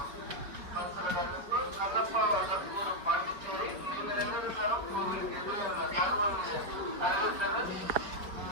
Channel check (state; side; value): late; left; 5.0 ms